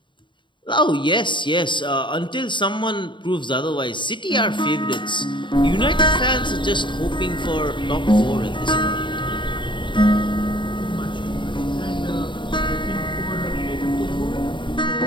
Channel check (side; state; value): right; late; 0.23 ms